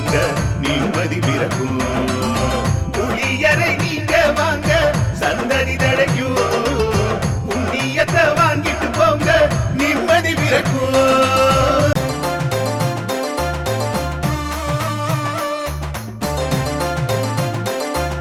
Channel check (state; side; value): identical; both; correlation 1.00